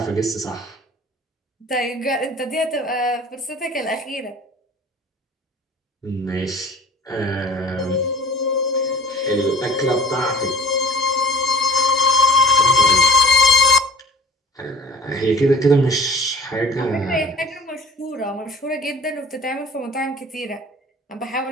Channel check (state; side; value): normal; both; correlation 0.43